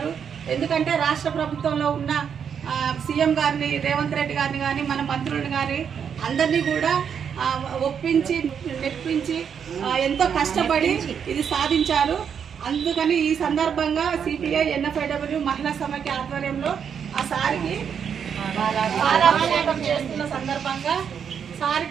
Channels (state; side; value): quieter; left; 7.5 dB